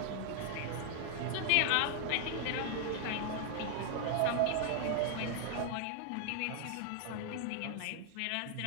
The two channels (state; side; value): different; both; correlation 0.00